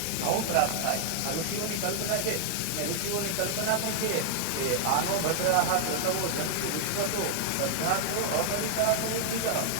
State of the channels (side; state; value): both; different; correlation 0.00